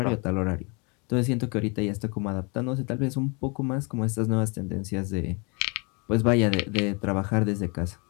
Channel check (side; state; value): right; quieter; 31.8 dB